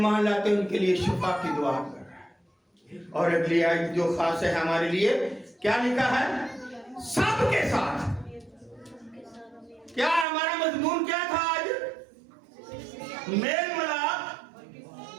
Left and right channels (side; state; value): left; drops out; at 10.2 s